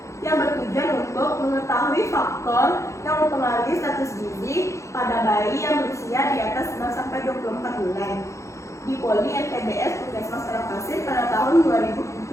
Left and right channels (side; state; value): right; late; 0.14 ms